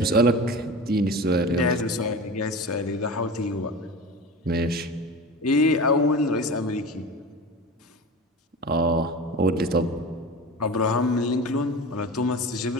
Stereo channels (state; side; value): normal; both; correlation 0.31